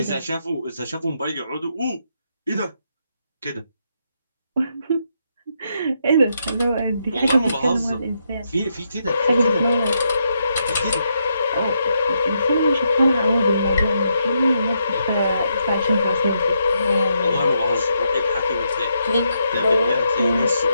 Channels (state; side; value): inverted; both; correlation -0.80